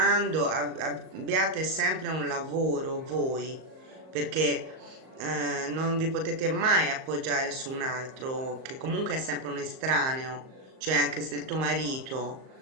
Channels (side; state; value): left; late; 38 ms